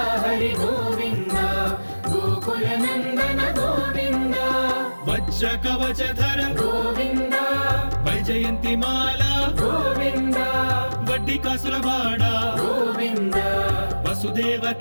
హరి గోవింద గోకుల నందన గోవింద వజ్ర కవచధర గోవింద వైజయంతి మాల గోవింద వడ్డీ కాసులవాడ గోవింద వసుదేవ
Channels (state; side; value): inverted; both; correlation -1.00